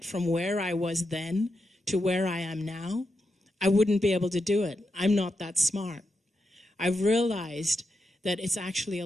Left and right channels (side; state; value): both; normal; correlation 0.86